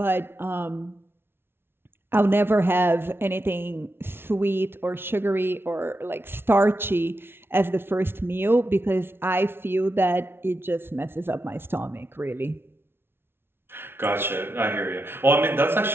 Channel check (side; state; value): left; late; 0.11 ms